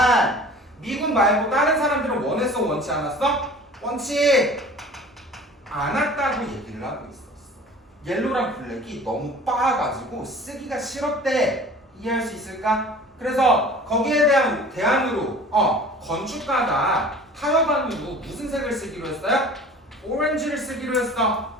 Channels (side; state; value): both; normal; correlation 0.44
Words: 미군 말고 다른 사람들은 원했어 원치 않았어? 원치 않았다고 얘기를 하고 있었어. 옐로랑 블랙이 너무 빻아가지고 쓰기가 싫었대. 이해할 수 있을까? 그래서 거기에 대한 대안으로 건축가가 타협안으로 무슨 색을 쓰기로 했어요? 오렌지를 쓰기로 했어.